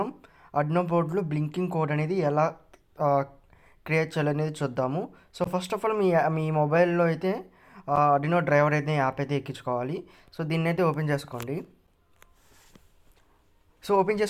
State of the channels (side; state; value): both; identical; correlation 1.00